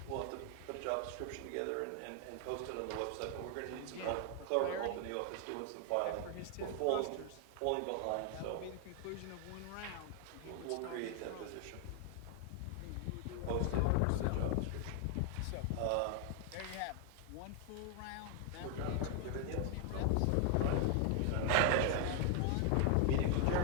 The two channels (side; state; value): both; different; correlation 0.00